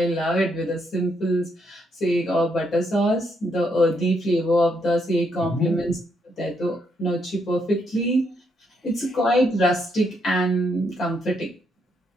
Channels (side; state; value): both; normal; correlation 0.75